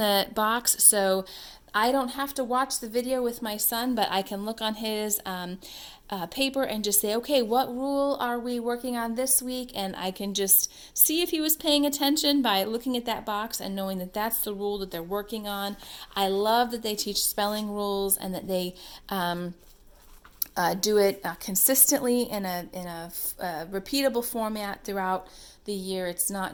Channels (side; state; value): both; identical; correlation 1.00